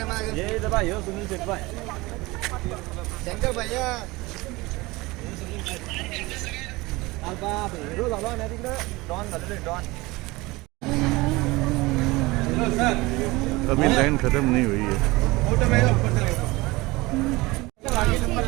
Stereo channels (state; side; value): quieter; left; 21.9 dB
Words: अभी लाइन खत्म नहीं हुई है।